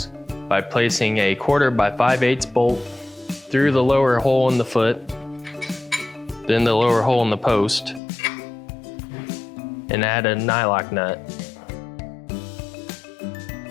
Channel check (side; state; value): right; drops out; at 8.0 s